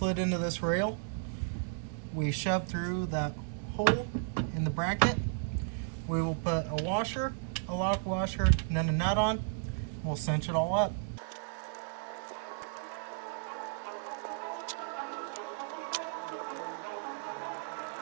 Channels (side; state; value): left; silent; digital silence